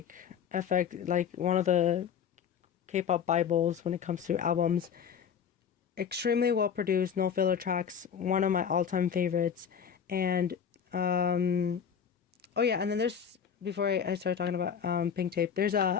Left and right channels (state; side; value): quieter; right; 7.6 dB